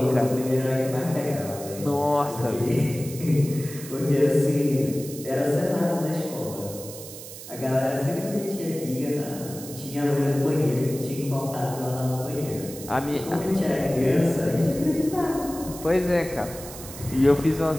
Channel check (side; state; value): right; noise; hiss, 13 dB below the sound